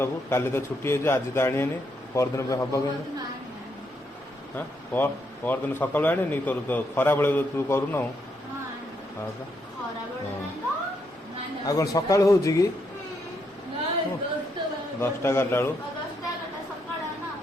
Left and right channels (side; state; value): both; normal; correlation 0.77